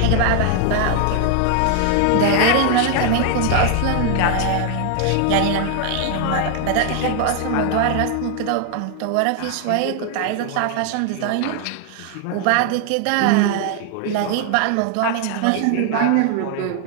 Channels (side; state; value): both; different; correlation 0.00